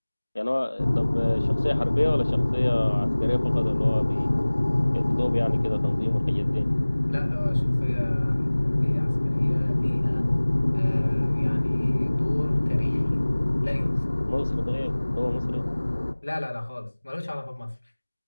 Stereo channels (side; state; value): both; inverted; correlation -1.00